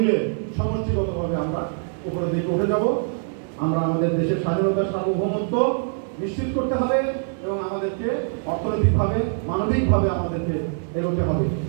সমষ্টিগতভাবে আমরা উপরের দিকে উঠে যাব। আমরা আমাদের দেশের স্বাধীনতার সার্বভৌমত্ব নিশ্চিত করতে হবে এবং আমাদেরকে অর্থনৈতিকভাবে, মানবিকভাবে আমাদেরকে এগোতে হবে।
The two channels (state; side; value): silent; left; digital silence